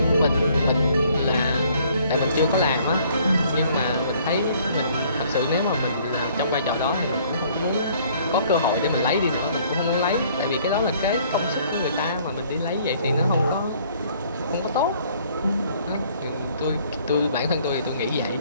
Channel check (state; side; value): inverted; both; correlation -0.60